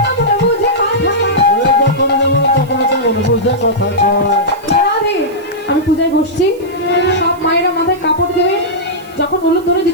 বুঝে কথা কয় আমি পূজায় বসছি সব মায়েরা মাথায় কাপড় দেবে যখন হলুদ ধরে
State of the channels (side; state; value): right; noise; hiss, 26 dB below the sound